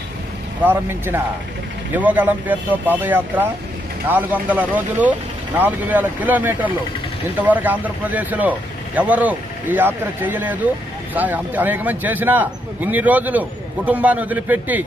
ప్రారంభించిన యువగలం పేరుతో పాదయాత్ర 400 రోజులు 4000 కిలోమీటర్లు. ఇంతవరకు ఆంధ్రప్రదేశ్లో ఎవరు ఈ యాత్ర చేయలేదు. అనేక మంది చేసినా ఇన్ని రోజులు కుటుంబాన్ని వదిలిపెట్టి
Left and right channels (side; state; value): both; normal; correlation 0.77